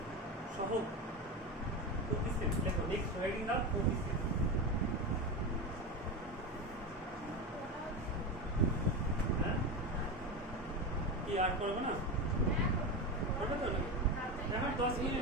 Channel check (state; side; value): normal; both; correlation 0.19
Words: সহগ কোএফিসিয়েন্ট লেখো নেক্সট রাইটিং আপ কোএফিসিয়েন্ট হ্যাঁ কি আর করবো না করবে তো এখন 10